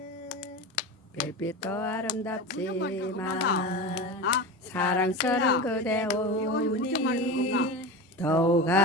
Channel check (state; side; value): normal; both; correlation 0.26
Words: 별빛도 아름답지만 아, 사랑스러운 그대 이거 무슨 말인 건가? 오니 더욱